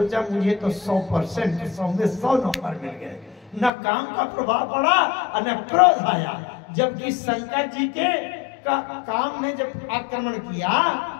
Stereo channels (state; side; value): drops out; right; at 3.7 s